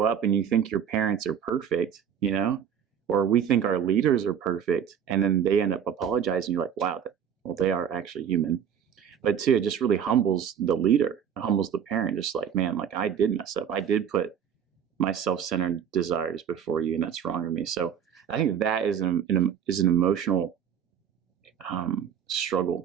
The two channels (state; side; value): quieter; left; 8.5 dB